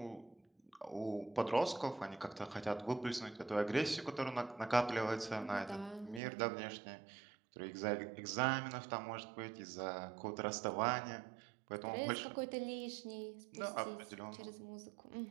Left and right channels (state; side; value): drops out; left; at 6.2 s